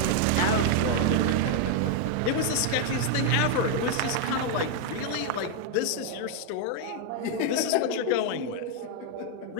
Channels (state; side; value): different; both; correlation 0.00